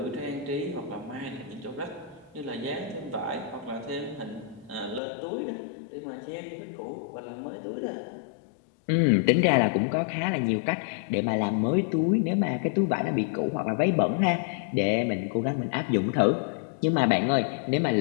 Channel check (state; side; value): drops out; right; at 5.0 s